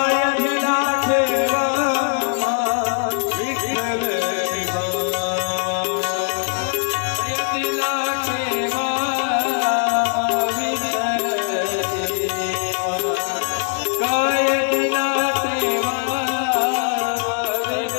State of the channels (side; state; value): right; silent; digital silence